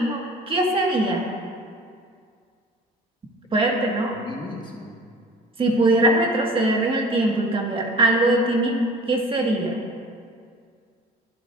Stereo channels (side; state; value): both; normal; correlation 0.43